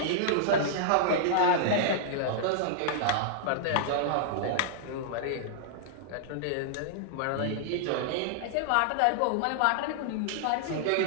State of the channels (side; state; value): both; different; correlation -0.01